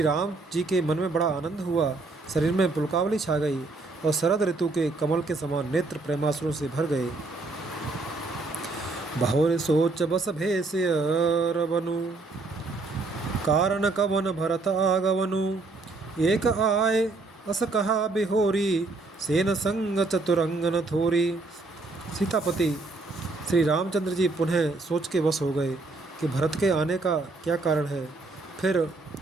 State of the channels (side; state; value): left; quieter; 3.4 dB